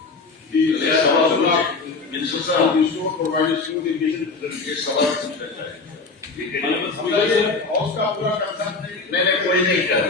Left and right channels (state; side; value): quieter; right; 4.0 dB